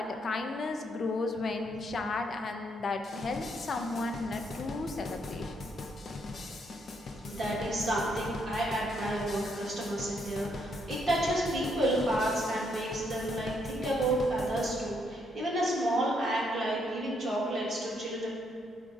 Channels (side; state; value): both; normal; correlation 0.74